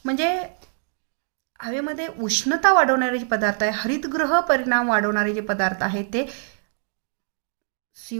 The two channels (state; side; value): silent; left; digital silence